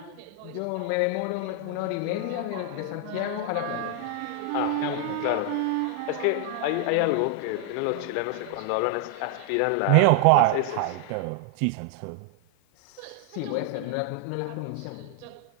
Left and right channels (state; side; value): different; both; correlation 0.00